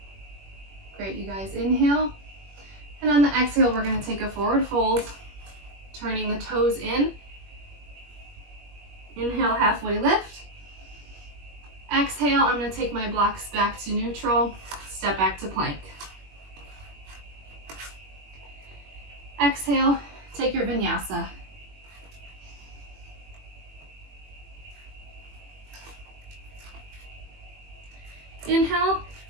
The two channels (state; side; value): late; left; 21 ms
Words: Great, you guys. Inhale. And on the exhale, we're going to take a forward fold, turning the toes in. Inhale, halfway lift. Exhale, I'm going to take my blocks back to neutral, step back to plank. Exhale, take your vinyasa. Inhale,